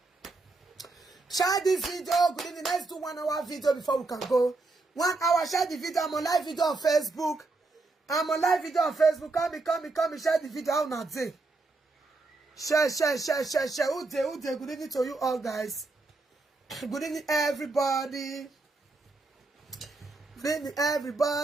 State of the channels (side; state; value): left; quieter; 3.4 dB